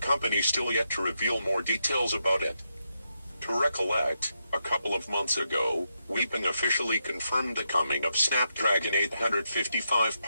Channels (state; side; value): inverted; both; correlation -0.84